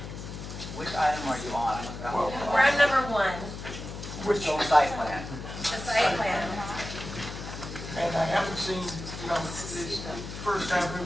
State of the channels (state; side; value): noise; left; hum, 9 dB below the sound